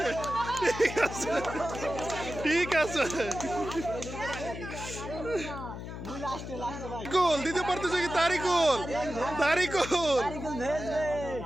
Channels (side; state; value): left; noise; hum, 9 dB below the sound